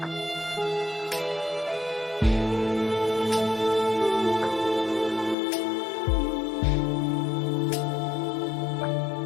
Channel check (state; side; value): drops out; right; at 5.4 s